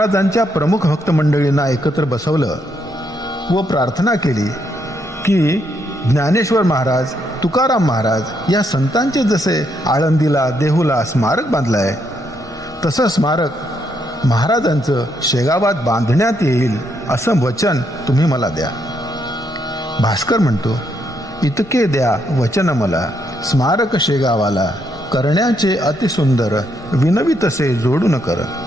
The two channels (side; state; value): both; normal; correlation 0.76